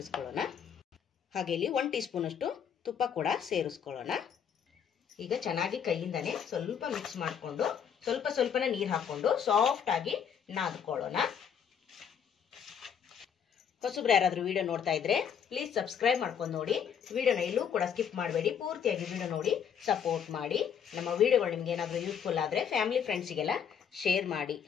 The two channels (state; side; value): quieter; right; 7.8 dB